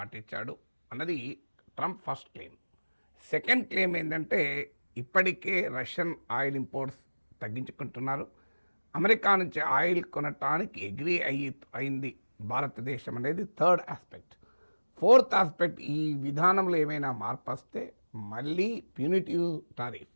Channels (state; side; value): inverted; both; correlation -1.00